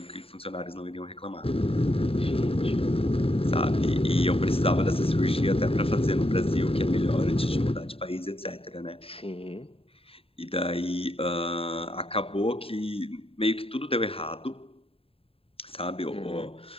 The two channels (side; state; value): right; late; 0.27 ms